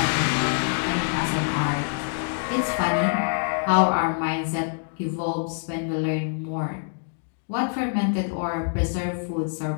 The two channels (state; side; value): silent; right; digital silence